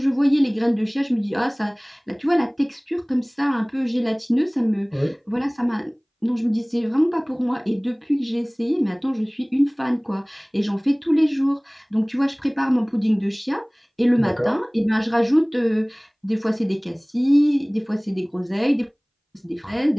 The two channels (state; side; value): identical; both; correlation 1.00